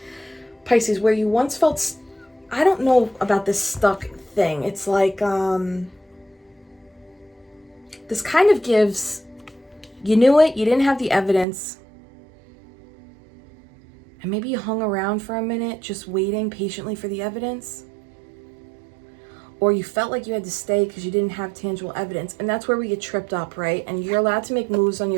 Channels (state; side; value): drops out; left; at 11.5 s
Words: Pisces, where you once felt, I don't know about this stuck thing. It's like, this kind of gives, you knew it, you didn't have the evidence, and maybe you hung around for a minute just waiting patiently for the evidence, or you felt like you had to stay because you didn't have tangible evidence. And that's where we get tripped up, right? And you're allowed to make moves